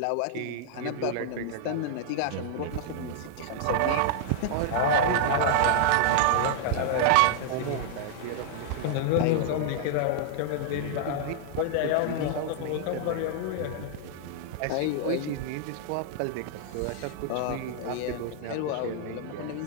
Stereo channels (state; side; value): different; both; correlation -0.01